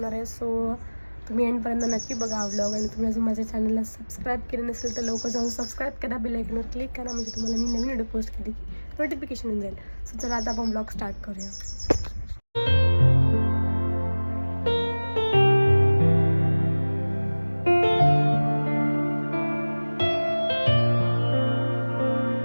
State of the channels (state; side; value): inverted; both; correlation -1.00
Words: आहे. सो तुम्ही एंडपर्यंत नक्की बघा हा ब्लॉग आणि तुम्ही अजून माझ्या चॅनलला सबस्क्राईब केले नसेल तर लवकर जाऊन सबस्क्राईब करा, बेल आयकॉनवर क्लिक करा, म्हणजे तुम्हाला मी नवीन व्हिडिओ पोस्ट केली की नोटिफिकेशन येऊन जाईल. सो चला आता आपण ब्लॉग स्टार्ट करूया.